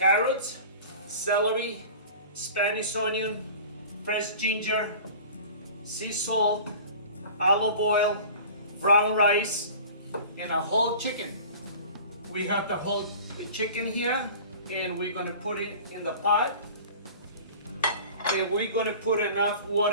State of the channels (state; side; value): inverted; both; correlation -0.41